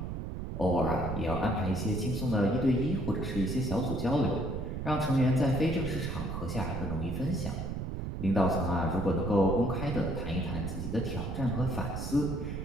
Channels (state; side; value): noise; right; rumble, 4 dB below the sound